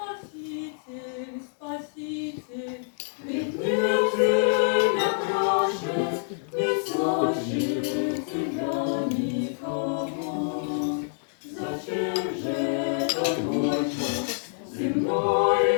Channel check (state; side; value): silent; right; digital silence